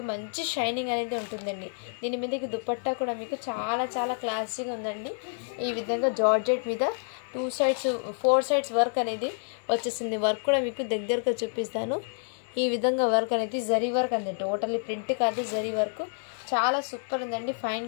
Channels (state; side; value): silent; right; digital silence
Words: మంచి షైనింగ్ అనేది ఉంటుందండి. దీని మీదకి దుపట్టా కూడా మీకు చాలా చాలా క్లాసీగా ఉందండి. ఈ విధంగా జార్జెట్ మీద 2 sides 4 sides వర్క్ అనేది వచ్చేసింది. వర్క్ కూడా మీకు దగ్గరగా చూపిస్తాను. ఈ విధంగా వర్క్ అనేది జరీ వర్క్ అండి. టోటల్లీ ప్రింట్ కాదు, జరీ వర్క్. చాలా సూపర్ ఉందండి. Fine